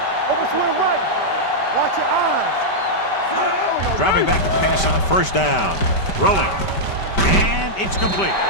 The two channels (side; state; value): right; late; 5.1 ms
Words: Overswing right. Watch your eyes. Dropping back to pass on first down. Rolling. And it's complete.